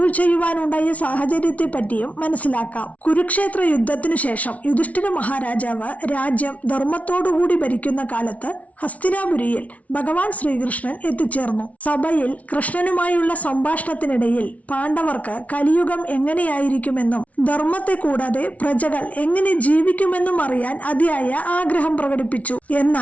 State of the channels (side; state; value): right; late; 0.068 ms